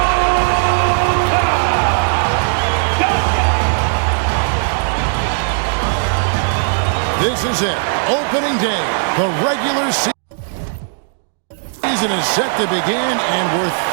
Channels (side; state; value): left; silent; digital silence